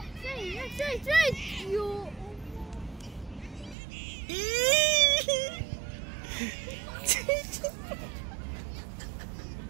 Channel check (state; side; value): drops out; left; at 3.8 s